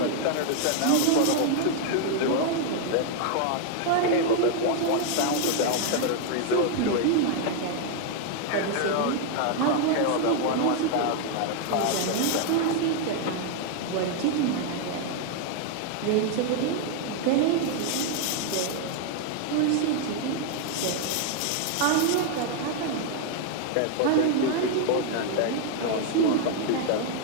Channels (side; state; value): both; different; correlation 0.00